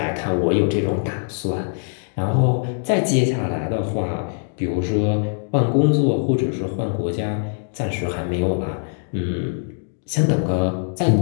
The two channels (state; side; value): silent; right; digital silence